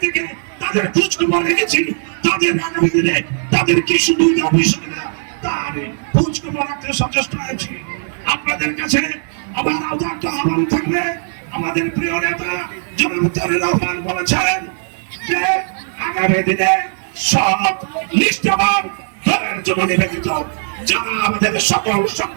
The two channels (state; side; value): silent; left; digital silence